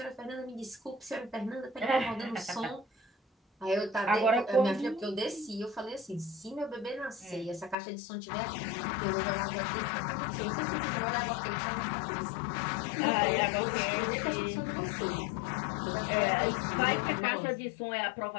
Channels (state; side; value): drops out; right; at 7.8 s